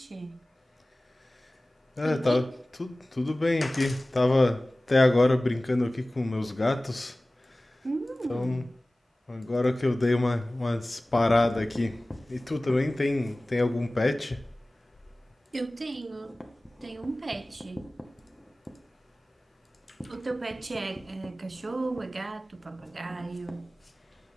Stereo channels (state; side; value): normal; both; correlation 0.98